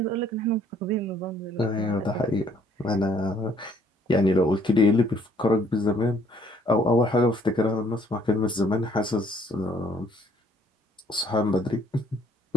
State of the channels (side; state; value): both; normal; correlation 0.63